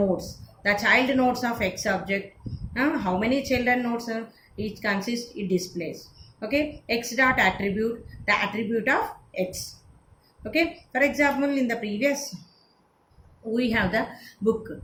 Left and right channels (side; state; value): both; identical; correlation 1.00